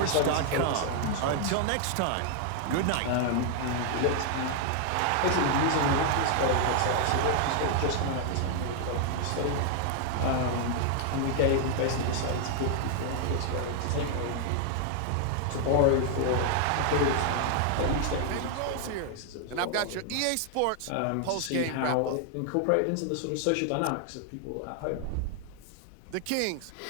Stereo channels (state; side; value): different; both; correlation 0.00